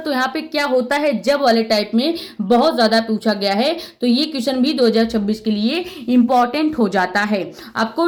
यहाँ पे क्या होता है जब वाले टाइप में बहुत ज्यादा पूछा गया है, तो ये क्वेश्चन भी 2026 के लिए इंपॉर्टेंट हो जाता है। आपको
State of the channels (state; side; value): identical; both; correlation 1.00